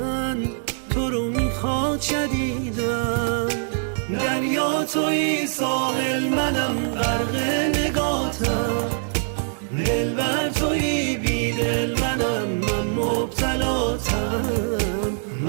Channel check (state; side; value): silent; left; digital silence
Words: تو رو میخواد شدیدن. دریا توی ساحل منم غرق نگاتم، دلبر توی بیدل منم من مبتلاتم.